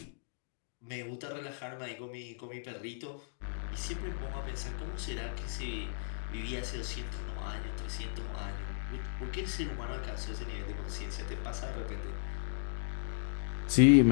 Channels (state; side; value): silent; right; digital silence